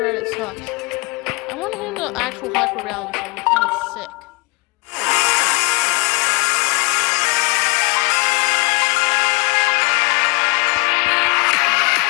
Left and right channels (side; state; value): right; quieter; 26.1 dB